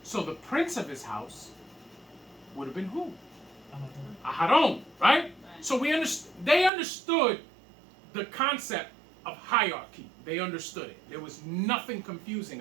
So the prince of his house would have been who? Aharon, right? Right. So they understood the concept of hierarchy. They understood it. There was nothing confusing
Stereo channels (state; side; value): drops out; left; at 6.7 s